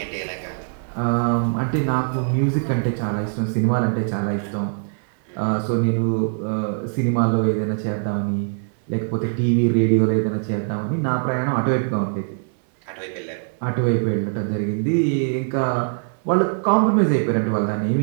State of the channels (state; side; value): silent; left; 64 dB below the other